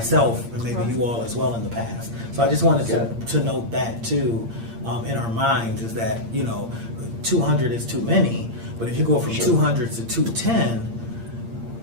and maybe you all as well in the past. So I just wanted to note that too in our minds, is that 200 is too many, but if you go from Sure. 200 to 210,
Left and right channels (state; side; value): late; left; 8.7 ms